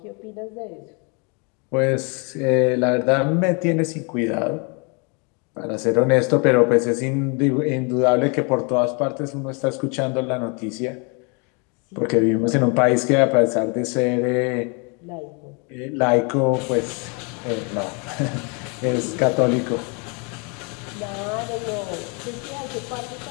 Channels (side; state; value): right; quieter; 33.6 dB